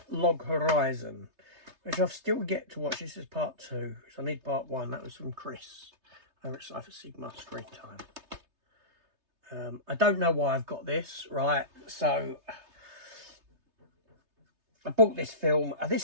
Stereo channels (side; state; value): left; late; 3.3 ms